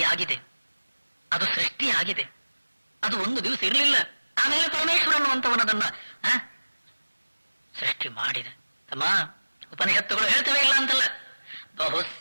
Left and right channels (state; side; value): inverted; both; correlation -1.00